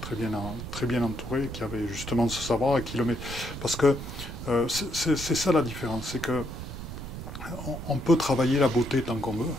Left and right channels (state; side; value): noise; right; rumble, 9 dB below the sound